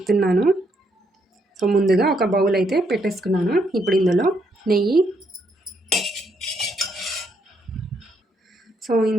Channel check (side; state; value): both; normal; correlation 0.75